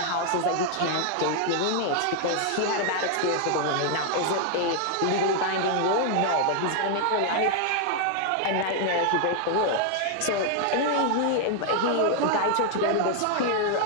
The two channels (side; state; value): both; different; correlation 0.00